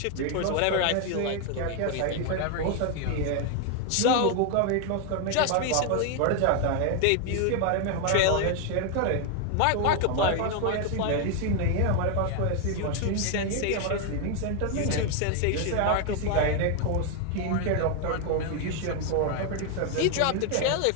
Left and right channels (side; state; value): both; different; correlation 0.00